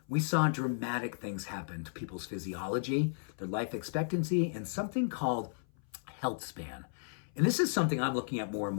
we saw dramatic things happen to people's physiology, their life expectancy, and something called healthspan. And this is something I'm looking at more and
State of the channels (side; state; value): right; silent; 55 dB below the other